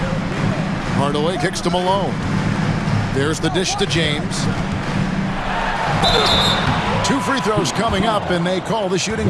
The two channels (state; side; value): identical; both; correlation 1.00